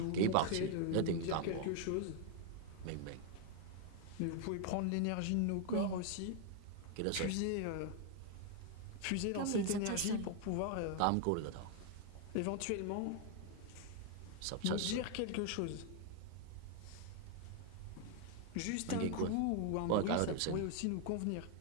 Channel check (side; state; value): both; different; correlation 0.01